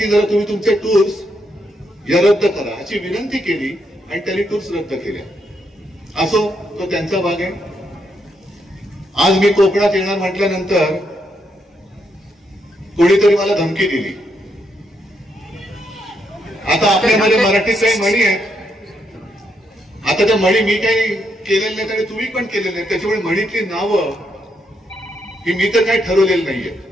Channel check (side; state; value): both; normal; correlation 0.78